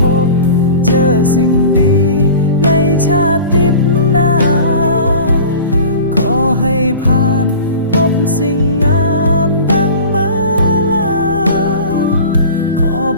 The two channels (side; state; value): both; inverted; correlation -0.39